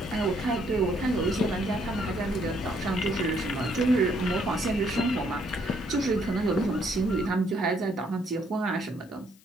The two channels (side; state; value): left; noise; hiss, 28 dB below the sound